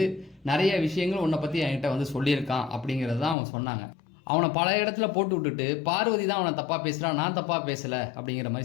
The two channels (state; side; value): drops out; right; at 3.4 s